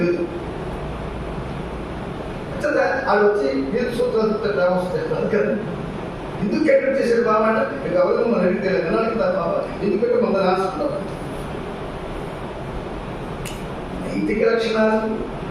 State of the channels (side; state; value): both; identical; correlation 1.00